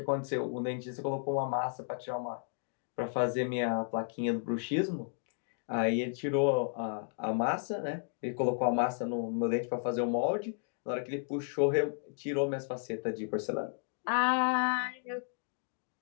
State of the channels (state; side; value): silent; right; 55 dB below the other